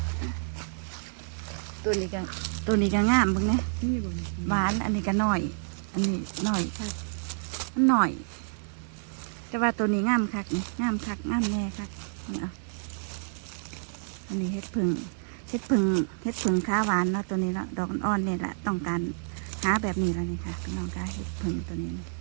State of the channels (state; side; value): silent; left; digital silence